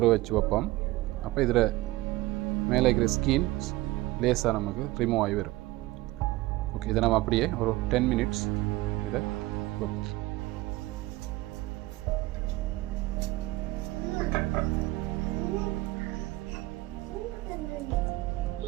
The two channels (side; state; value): left; quieter; 18.8 dB